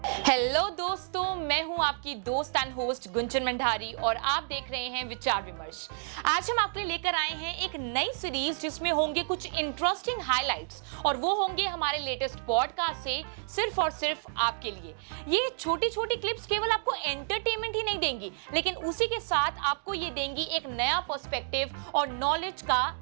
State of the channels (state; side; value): silent; left; digital silence